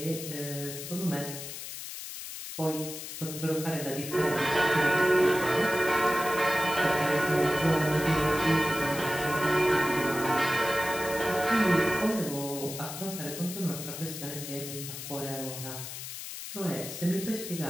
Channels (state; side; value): noise; left; hiss, 9 dB below the sound